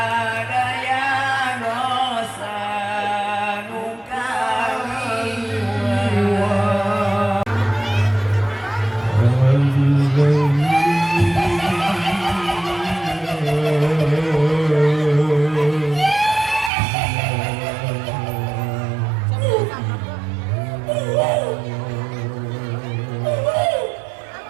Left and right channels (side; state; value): left; drops out; at 16.7 s